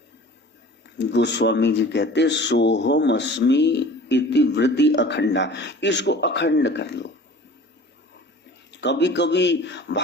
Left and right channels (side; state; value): both; normal; correlation 0.44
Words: गोस्वामी जी कहते सोहम अस्मि इति वृत्ति अखंडा। इसको अखंड कर लो। कभी कभी